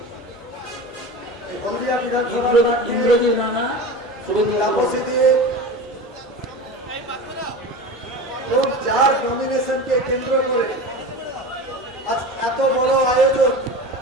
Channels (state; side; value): normal; both; correlation 0.30